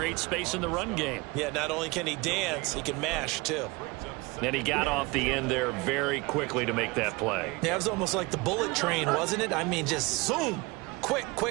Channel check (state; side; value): quieter; left; 24.8 dB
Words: space in the run game. Yeah, not only can he dance, he can mash, too. And he got off the end there very quickly to make that play. Yeah, it was almost like the bullet train, wasn't it? I mean, just zoom. Quick,